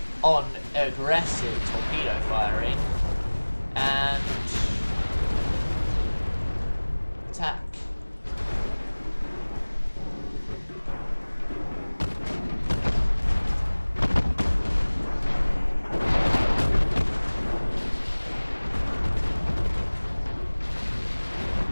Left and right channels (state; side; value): inverted; both; correlation -1.00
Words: on aggressive torpedo firing and attack.